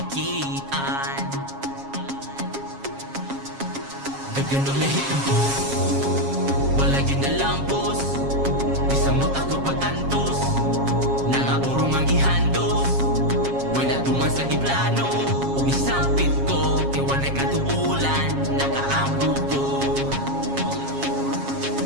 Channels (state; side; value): late; left; 7.3 ms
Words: Ganun lahit ang buhok, wala yun na lang boss. Bisang mo ako pag-antos, nangaburong ang ihandos. Wala tuman sa iplano, umisampit ko, kaya wala'y katuulan, nakaampo ko.